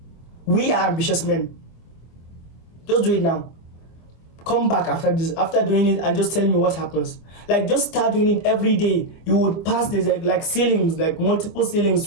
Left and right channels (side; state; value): right; late; 25 ms